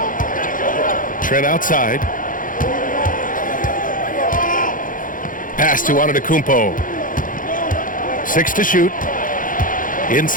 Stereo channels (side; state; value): right; late; 0.39 ms